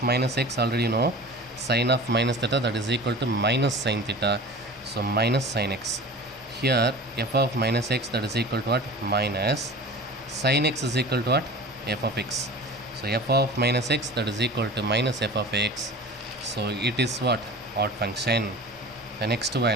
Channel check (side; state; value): both; normal; correlation 0.38